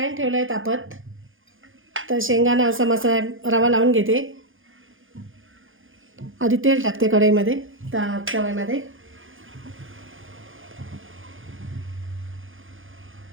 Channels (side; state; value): left; late; 0.58 ms